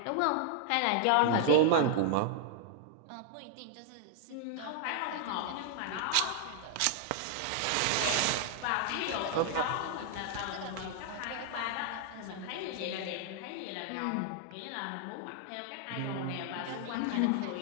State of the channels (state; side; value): different; both; correlation -0.01